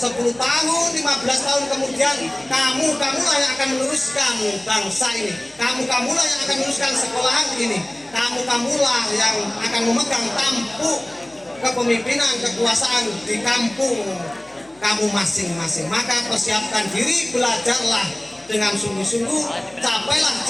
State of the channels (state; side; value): noise; left; hum, 29 dB below the sound